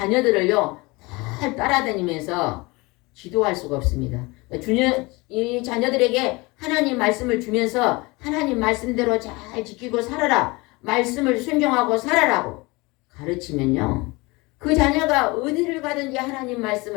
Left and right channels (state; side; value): quieter; right; 24.3 dB